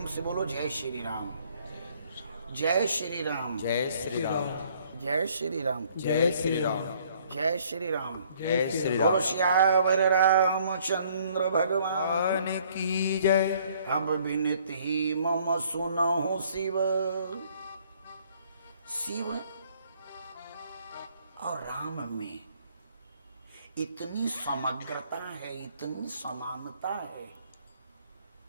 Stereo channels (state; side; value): inverted; both; correlation -0.62